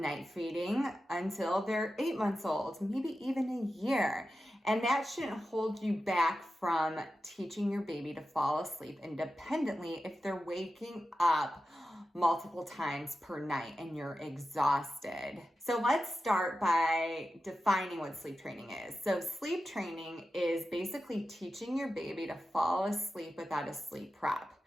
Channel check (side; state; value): both; normal; correlation 0.92